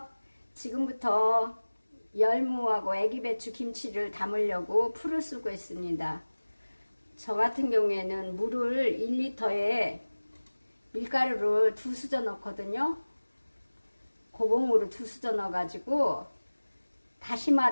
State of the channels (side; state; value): both; inverted; correlation -1.00